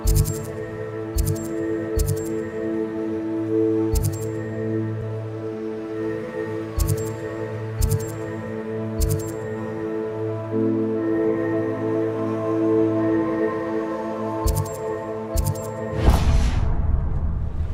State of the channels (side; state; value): both; identical; correlation 1.00